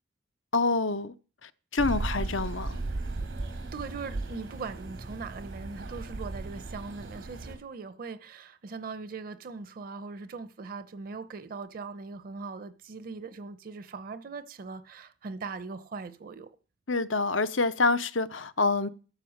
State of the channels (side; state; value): both; normal; correlation -0.10